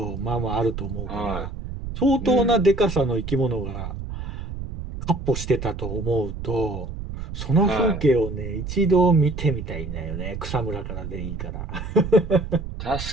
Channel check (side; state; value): right; noise; rumble, 7 dB below the sound